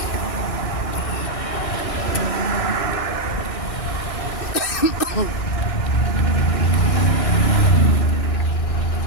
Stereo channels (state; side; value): late; right; 1.6 ms